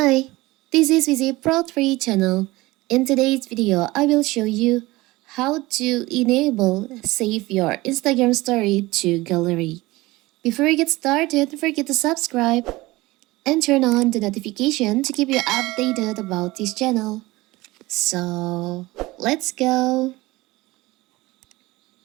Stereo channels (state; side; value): quieter; left; 20.1 dB